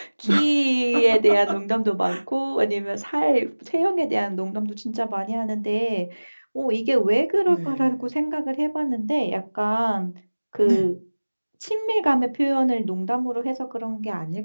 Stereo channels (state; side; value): inverted; both; correlation -1.00